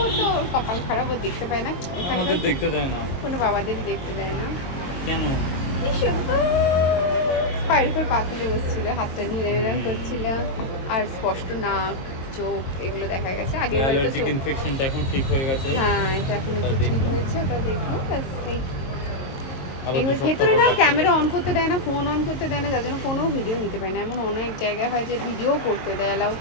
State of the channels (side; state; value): right; late; 22 ms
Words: তো ওর কপাল খারাপ, ও দেখতে পায় না, আমাদের দেখতে দেয় না, কোনো বাবাদেরই দেখতে দেয় না। কেন? কি সুন্দর পায়ের উপর পা তুলে বসছিল, হাতটা নিয়ে এরকম করছিল, আর স্পষ্ট নাক চোখ এগুলো দেখা গেছে। আগে অ্যালার্জিক ইনফেকশনটা এখন ঠিক হয়ে গেছে। হ্যাঁ এটা এখন ঠিক হয়েছে, ওটা দেখলো ব্যাস। এবার ভেতরে না ক্যামেরা অন করতে দেয় না, ফোন অন করতে দেয় না, যার জন্য কোনো ভিডিও নিতে পারে না। এমন অনেক জায়গায় হয় যে ভিডিও করতে দেয়, অ্যালাউ